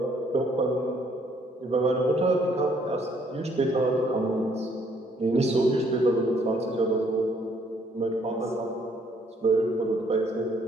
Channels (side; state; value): both; normal; correlation 0.66